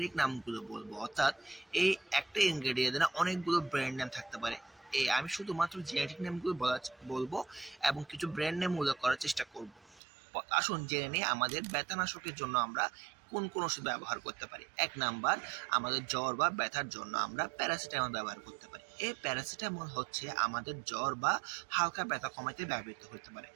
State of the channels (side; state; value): left; drops out; at 10.0 s